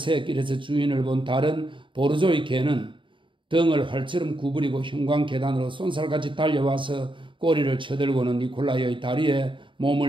주인을 본 다른 보르조의 개는 등을 활처럼 구부리고 형광 계단으로 쏜살같이 달려와서 꼬리를 쳐들고는 니콜라이의 다리에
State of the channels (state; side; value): late; left; 0.24 ms